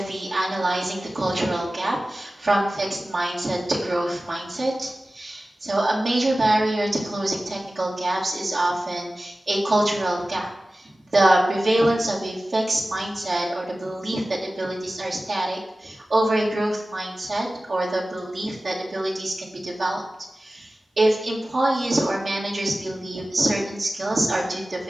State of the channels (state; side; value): normal; both; correlation 0.96